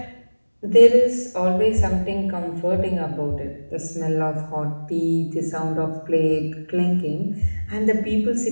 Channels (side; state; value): both; inverted; correlation -1.00